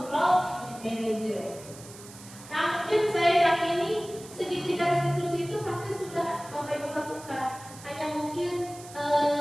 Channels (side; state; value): right; noise; hiss, 17 dB below the sound